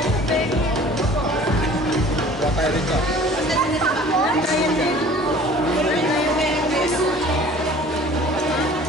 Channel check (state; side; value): normal; both; correlation 0.48